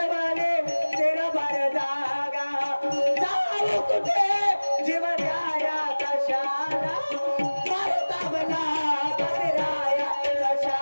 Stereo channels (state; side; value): inverted; both; correlation -1.00